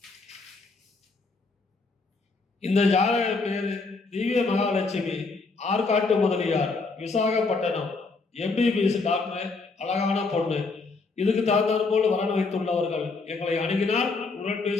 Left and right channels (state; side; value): quieter; right; 4.0 dB